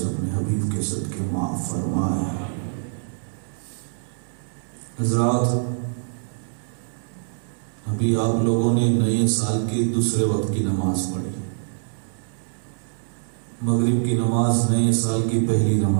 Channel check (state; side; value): silent; left; 62 dB below the other